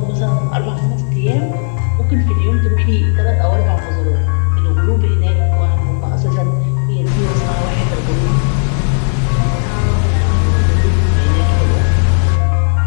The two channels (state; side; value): silent; right; digital silence